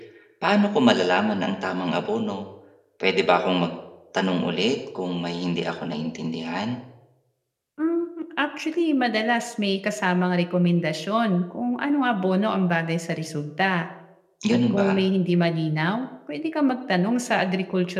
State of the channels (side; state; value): both; identical; correlation 1.00